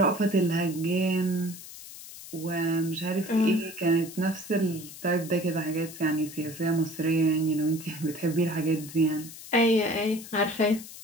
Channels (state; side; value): noise; left; hiss, 14 dB below the sound